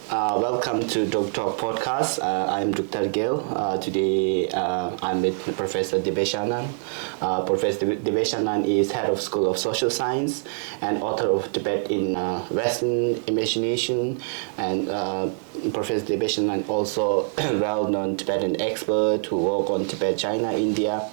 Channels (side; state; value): left; silent; 62 dB below the other